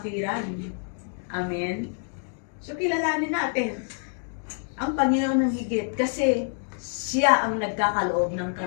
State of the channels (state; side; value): silent; right; 56 dB below the other